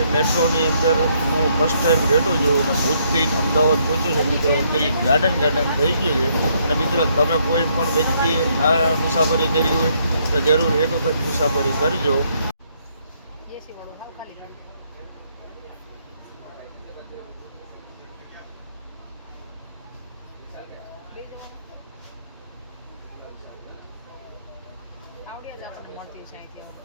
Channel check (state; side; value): inverted; both; correlation -0.71